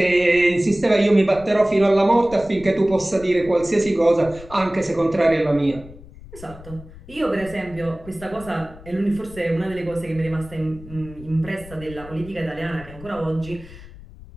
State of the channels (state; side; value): noise; left; rumble, 18 dB below the sound